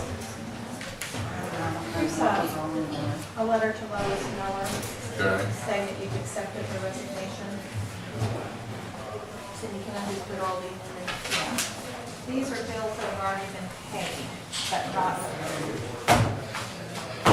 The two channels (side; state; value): both; identical; correlation 1.00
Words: Here's a letter to Lois Miller Okay. saying that you've accepted the resignation. Cindy, can I just put all these in there? Yeah. These are bills that have already been paid, but not.